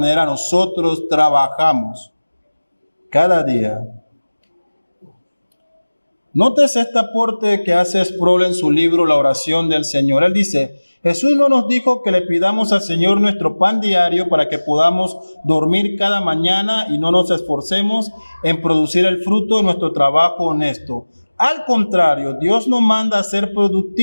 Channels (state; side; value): inverted; both; correlation -1.00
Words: nosotros trabajamos cada día. Nótese este aporte que hace Sproul en su libro La oración del Señor. Él dice, Jesús no nos dijo que le pidamos al Señor nuestro pan diario para que podamos dormir cada mañana y no nos esforcemos en producir el fruto de nuestro trabajo honesto. Al contrario, Dios nos manda a ser